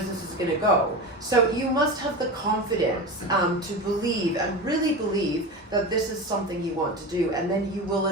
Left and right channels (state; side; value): normal; both; correlation 0.26